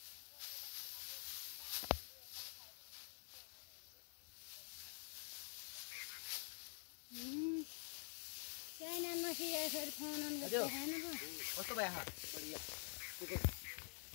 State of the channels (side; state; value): right; silent; digital silence